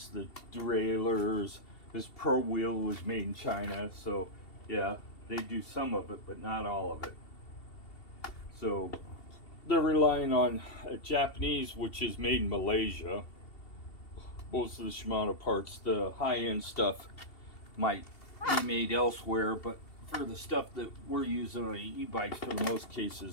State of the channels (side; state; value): right; late; 2.7 ms